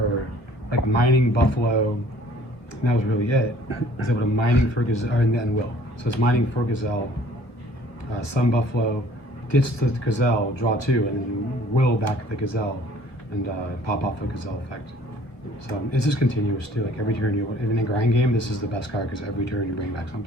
like mining Buffalo. And that was really it. I was able to mining for Gazelle, and Will. So it's mining for Gazelle, some Buffalo, ditch the Gazelle, draw 2, and then Will back the Gazelle, and pop off the Gazelle effect. So it's just continuous too. Like every turn in a grind game, this is the best card because every turn you bring back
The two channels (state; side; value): late; right; 1.2 ms